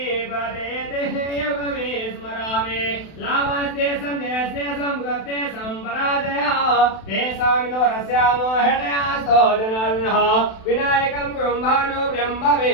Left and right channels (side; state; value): right; late; 32 ms